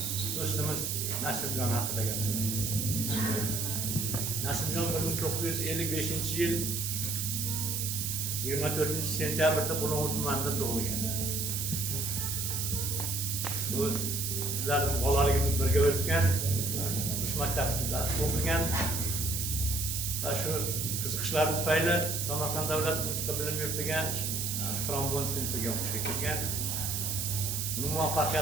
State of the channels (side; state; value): right; noise; hiss, 1 dB below the sound